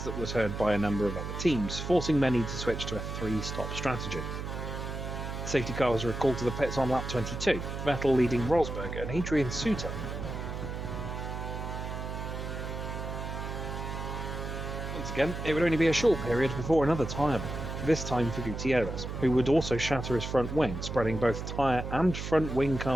that was heard by a number of other teams, forcing many to switch to a 3-stop strategy. The safety car was recalled to the pits on lap 22, Vettel leading Rosberg and Adrian Suter. Once again, it would only be a short period before another tyre blow, this time for Gutierrez, who would also shatter his front wing, spreading both tyre and front wing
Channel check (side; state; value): right; noise; hum, 6 dB below the sound